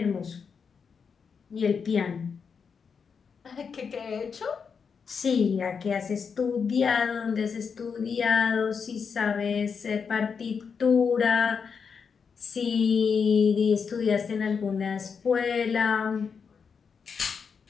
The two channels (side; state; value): right; quieter; 6.0 dB